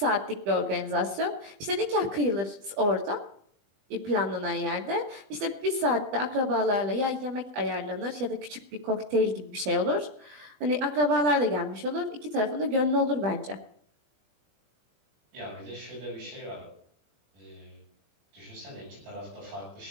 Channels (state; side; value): late; left; 20 ms